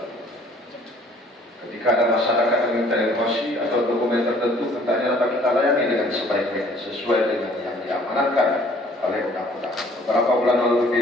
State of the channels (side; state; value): both; normal; correlation 0.56